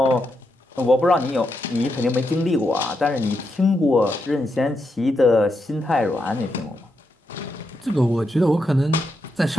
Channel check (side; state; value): both; normal; correlation 0.83